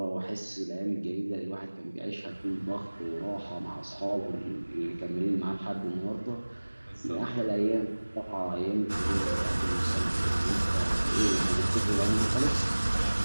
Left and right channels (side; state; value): both; inverted; correlation -1.00